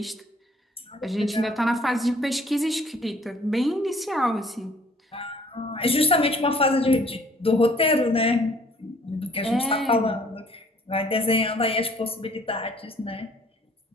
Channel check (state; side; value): normal; both; correlation 0.58